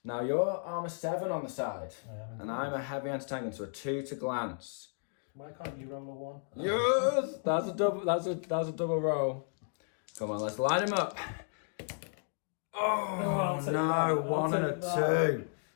Now you're armour 7 on the side, and I'm a heavy anti-tank gun, so a 2 to glance. Why can't you roll a 1? Yes, that's a double. That's a double roll. Come on, let's line him up. Oh no, 1 and a 2.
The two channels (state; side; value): silent; right; digital silence